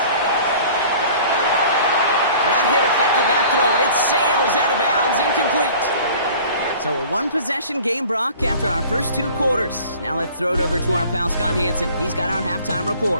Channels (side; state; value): both; inverted; correlation -0.47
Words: That hit affected that throw. It sails out of bounds, incomplete. So a 1-possession game, Brock, after our first 2 quarters. Now let's throw it over to our pal Scott Hanson. He's got our halftime